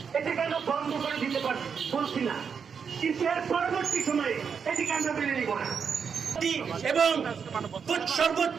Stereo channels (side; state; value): left; quieter; 6.5 dB